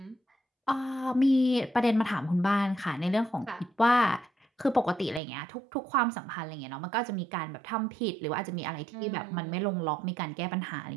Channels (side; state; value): left; drops out; at 5.2 s